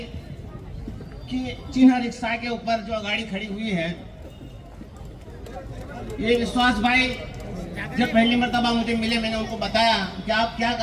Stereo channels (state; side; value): identical; both; correlation 1.00